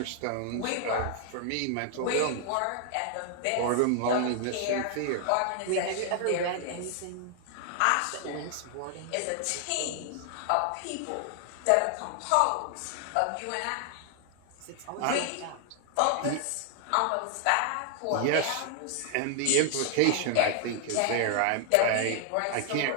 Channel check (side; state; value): both; different; correlation 0.00